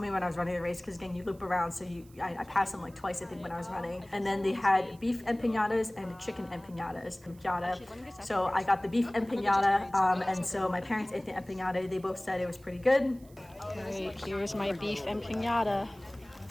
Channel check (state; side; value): noise; right; hiss, 27 dB below the sound